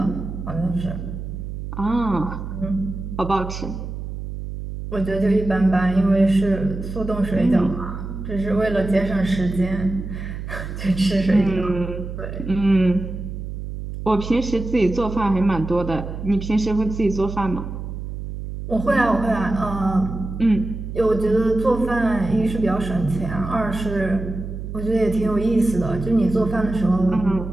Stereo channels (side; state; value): right; noise; hum, 7 dB below the sound